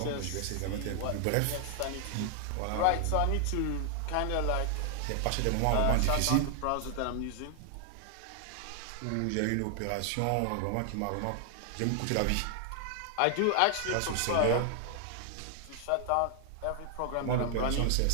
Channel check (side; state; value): both; different; correlation 0.00